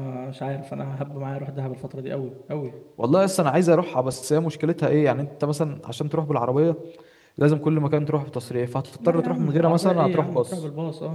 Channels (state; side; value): identical; both; correlation 1.00